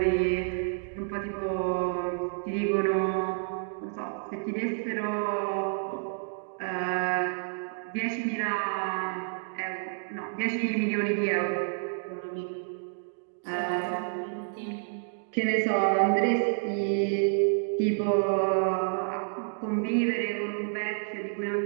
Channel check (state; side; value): silent; left; digital silence